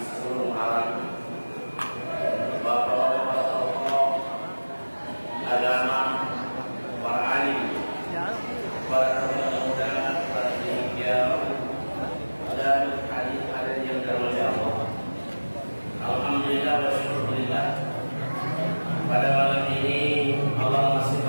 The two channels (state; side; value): inverted; both; correlation -1.00